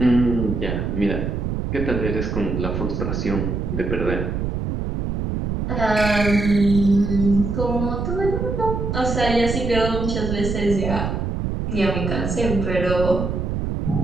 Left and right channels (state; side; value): noise; right; rumble, 2 dB below the sound